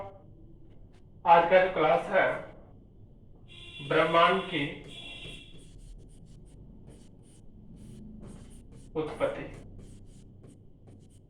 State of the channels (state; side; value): identical; both; correlation 1.00